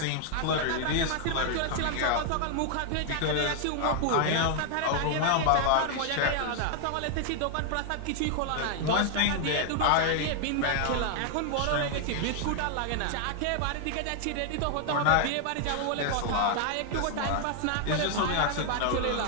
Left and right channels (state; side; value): different; both; correlation 0.00